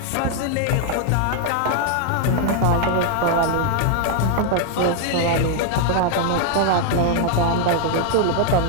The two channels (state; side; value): different; both; correlation 0.00